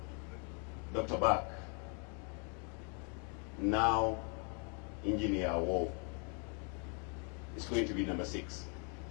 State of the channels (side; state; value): right; quieter; 35.6 dB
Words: Dr. Bak. Now, Engineer Awuow is going to be number 6.